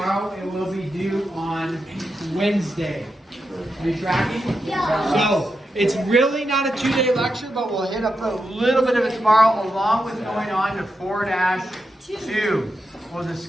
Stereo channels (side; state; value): both; normal; correlation 0.87